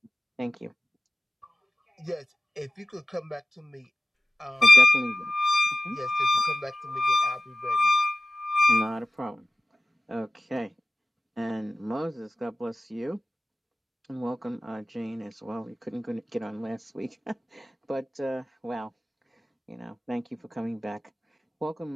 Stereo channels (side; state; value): both; normal; correlation 0.97